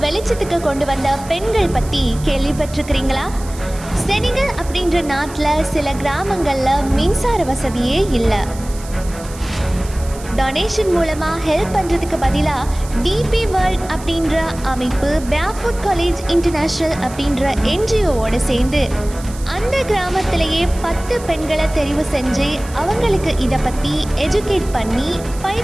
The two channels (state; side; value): noise; right; hiss, 17 dB below the sound